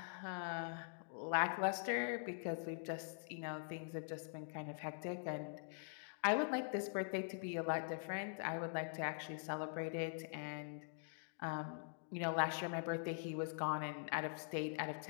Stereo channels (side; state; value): right; silent; digital silence